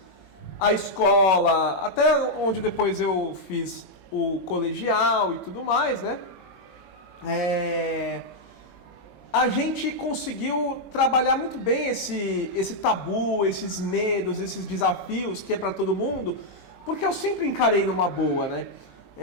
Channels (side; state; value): right; late; 21 ms